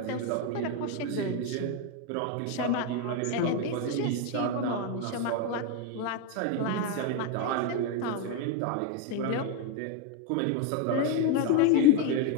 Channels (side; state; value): both; different; correlation 0.02